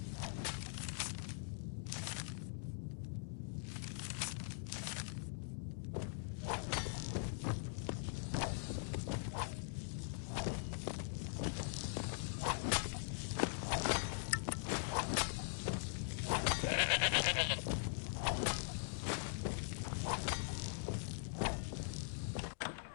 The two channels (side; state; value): right; silent; digital silence